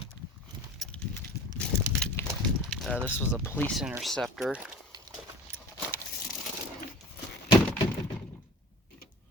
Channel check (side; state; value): both; normal; correlation 0.41